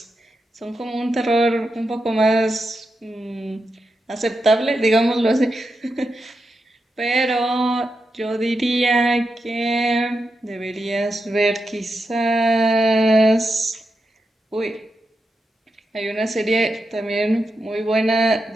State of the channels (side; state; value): both; normal; correlation 0.87